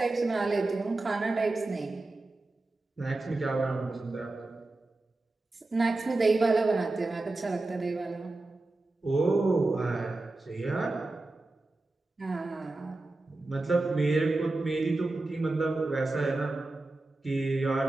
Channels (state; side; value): quieter; left; 3.1 dB